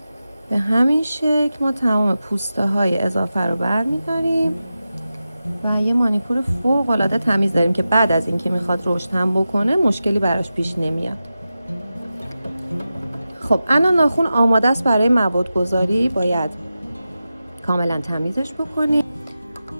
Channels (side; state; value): both; inverted; correlation -0.92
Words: به همین شکل ما تمام پوسته های اضافه رو برمیداریم و یه مانیکور فوق العاده تمیز داریم که بعد از اینکه میخواد رشد هم بکنه مشکلی براش پیش نمیاد. خب الان ناخن آماده است برای مواد گذاری. باید کاملا تمیزش بکنیم.